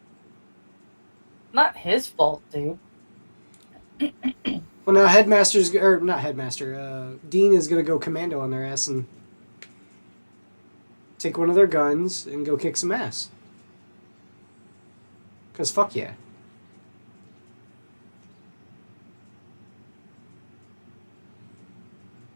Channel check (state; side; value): inverted; both; correlation -1.00